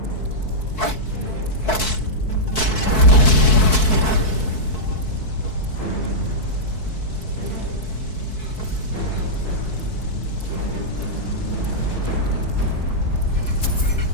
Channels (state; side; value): late; right; 4.6 ms